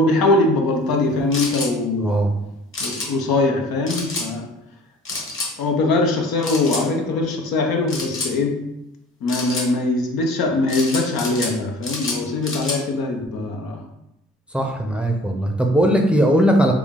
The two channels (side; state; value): both; normal; correlation 0.49